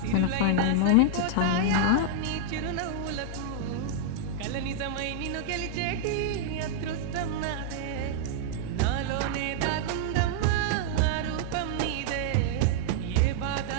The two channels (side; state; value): both; different; correlation -0.01